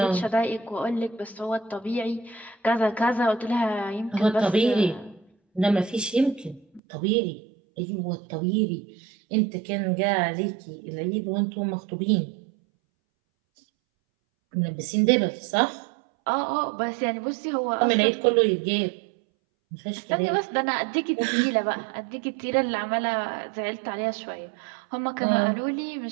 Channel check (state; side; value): drops out; left; at 6.8 s